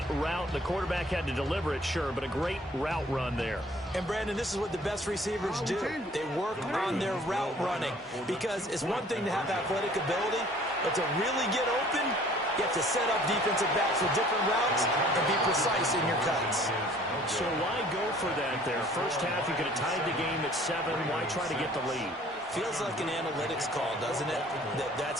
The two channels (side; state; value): both; normal; correlation 0.54